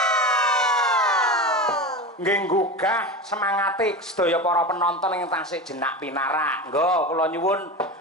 Nggih nggugah semangate sedaya para penonton ing tasih jenak pinarak. Nggo kula nyuwun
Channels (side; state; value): both; normal; correlation 0.26